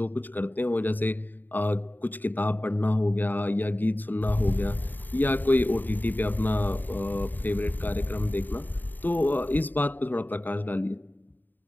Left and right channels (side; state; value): right; late; 0.089 ms